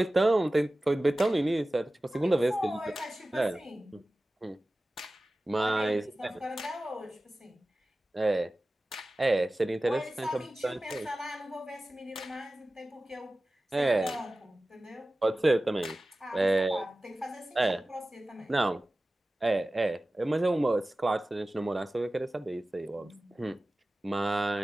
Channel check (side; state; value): both; normal; correlation 0.96